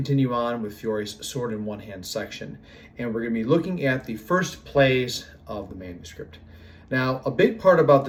on with Fiore's sword in one hand section, and we're going to be looking at the first plays of the manuscript. Now, a big part about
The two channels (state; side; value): identical; both; correlation 1.00